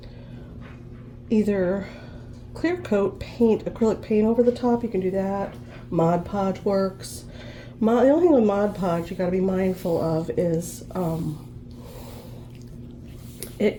either clear coat paint, acrylic paint over the top. You can do that. Mod Podge works. The only thing with Mod Podge you got to be mindful of is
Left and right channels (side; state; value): both; identical; correlation 1.00